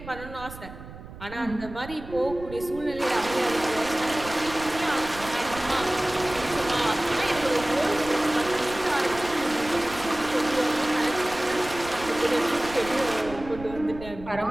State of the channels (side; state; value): right; noise; rumble, 14 dB below the sound